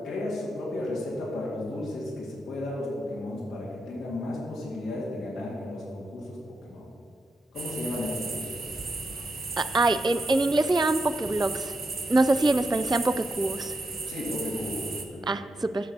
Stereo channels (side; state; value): both; normal; correlation 0.84